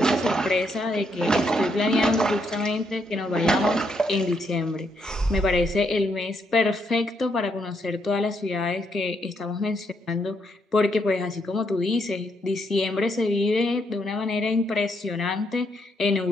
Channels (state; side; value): normal; both; correlation 0.76